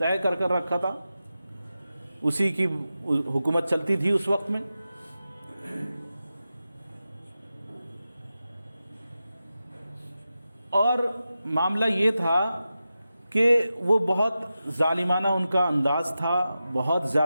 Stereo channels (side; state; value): both; inverted; correlation -0.92